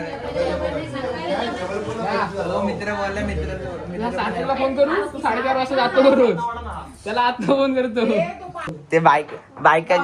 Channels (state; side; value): identical; both; correlation 1.00